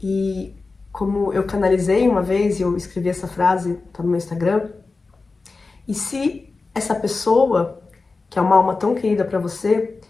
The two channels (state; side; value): quieter; right; 3.9 dB